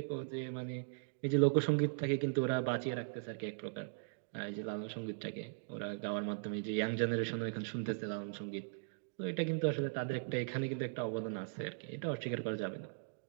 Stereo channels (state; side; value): silent; left; digital silence